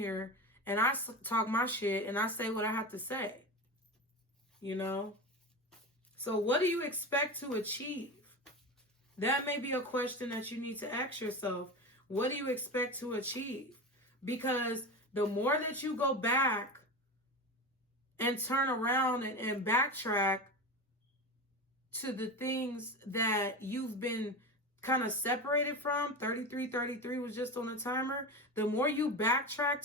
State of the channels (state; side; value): normal; both; correlation 0.24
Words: and I talk my shit and I say what I have to say. You know? So what do you expect to achieve? That may be a question that you need to ask yourself. What do you expect to achieve? Because the more that you go back and turn around and backtrack to the things that you've been kind of separated from, 33 was just on a timer, the more you backtrack